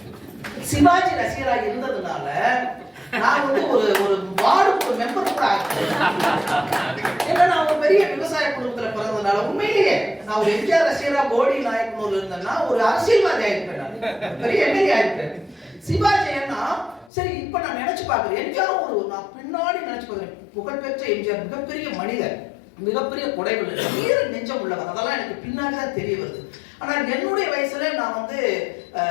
சிவாஜி ரசிகரா இருந்ததுனால நான் ஒரு வார்டு மெம்பர் கூட ஆகிறேன். ஏன்னா நான் ஒரு பெரிய விவசாய குடும்பத்துல பிறந்ததுனால உண்மையிலேயே நான் ஒரு எம்ஜிஆர் ரசிகரா போடி நாயக்கனூர்ல இருந்தேன்னா ஒரு அரசியல்வாதி ஆயிருப்பேன், நான் பெரிய எம்எல்ஏ ஆயிருப்பேன். சிவாஜி ஏன்னா சரி இப்ப நான் நினைச்சு பாக்குறேன், எம்ஜிஆர் நான் பின்னாடி நினைச்சு பாக்குறேன், புகழ்பெற்ற எம்ஜிஆர் மிகப்பெரிய மனிதர், மிகப்பெரிய கொடைகள், வீர நெஞ்சம் உள்ளவர், அதெல்லாம் எனக்கு பின்னாடிதான் தெரிய வருது. ஆனா என்னுடைய வயசுல நான்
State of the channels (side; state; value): right; drops out; at 17.1 s